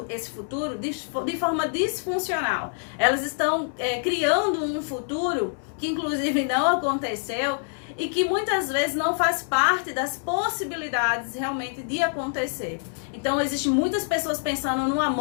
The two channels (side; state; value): right; silent; digital silence